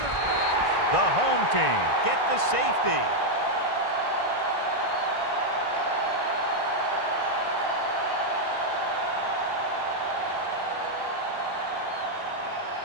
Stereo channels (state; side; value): late; right; 1.5 ms